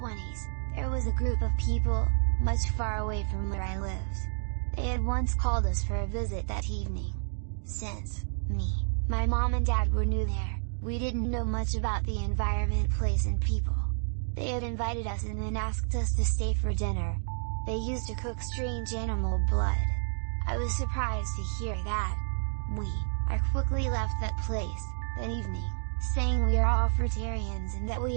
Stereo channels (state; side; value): silent; left; digital silence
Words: there was a group of people, much far away from where I lived. They had once called us for a visit that evening. Since me, my mom and dad were new there, we didn't know much about the environment, place and people. They had invited us and then asked us to stay for dinner. They used to cook strange animal blood. I was surprised to hear that. I quickly left that place, that evening, saying we are all fruitarians and that